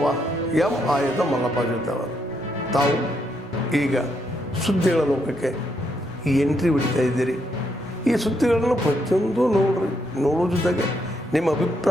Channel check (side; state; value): both; normal; correlation 0.77